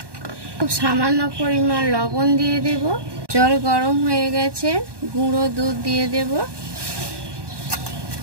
খুব সামান্য পরিমাণ লবণ দিয়ে দেব। জল গরম হয়ে গেছে, গুঁড়ো দুধ দিয়ে দেব।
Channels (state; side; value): late; left; 1.2 ms